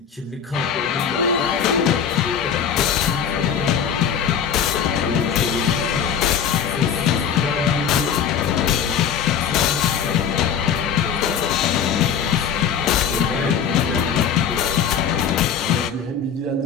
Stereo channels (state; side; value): quieter; right; 7.6 dB